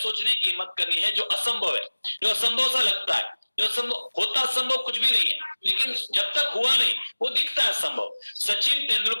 की हिम्मत करनी है जो असंभव है, जो असंभव सा लगता है, जो असंभव होता, असंभव कुछ भी नहीं है, लेकिन जब तक हुआ नहीं वो दिखता है असंभव। सचिन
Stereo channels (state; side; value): inverted; both; correlation -1.00